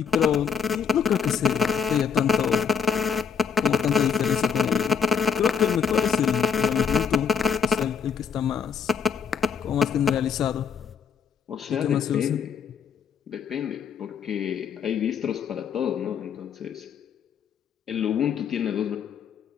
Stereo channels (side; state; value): right; quieter; 6.8 dB